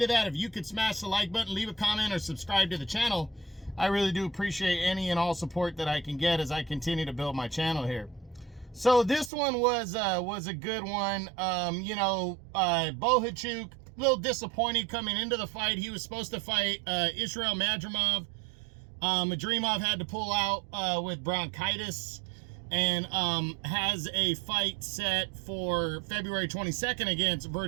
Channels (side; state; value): left; drops out; at 9.3 s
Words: that, if you could smash the like button, leave a comment, or subscribe to the channel, I really do appreciate any and all support that I can get as I continue to build my channel here. So this one was a good one. Bohachuk, a little disappointed coming into the fight. He was supposed to fight Israel Madrimov. Madrimov had to pull out with bronchitis, and has a fight set for February 22nd against